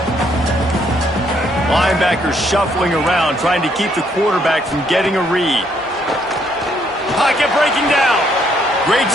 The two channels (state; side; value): normal; both; correlation 0.70